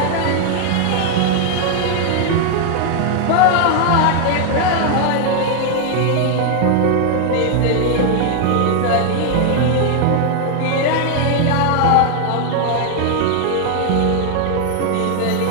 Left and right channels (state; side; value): different; both; correlation 0.00